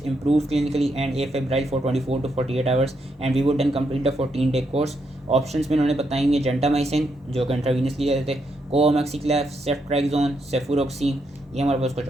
improve clinically and afebrile for 24 to 48 hours and we would then complete the 14-day course. Options में उन्होंने बताएंगे gentamicin जो कि intravenous लिए जाते थे, कोमैक्सिक्लेफ, सेफ्ट्राइक्सोन, सेफुरोक्सीन, ये हमारे पास कुछ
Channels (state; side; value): normal; both; correlation 0.79